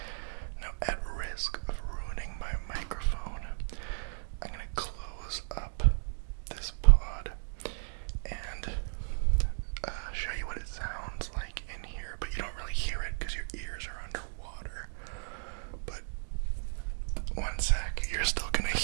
Now, at risk of ruining my microphone, I'm going to close up this pod and show you what it sounds like in here, but you don't really hear it because your ears are underwater. But one sec, you're still gonna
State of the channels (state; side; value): silent; left; digital silence